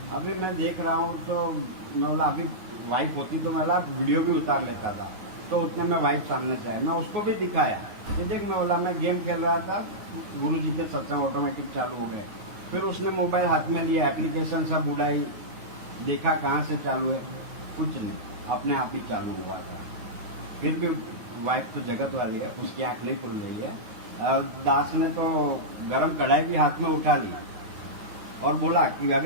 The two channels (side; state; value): left; late; 9.5 ms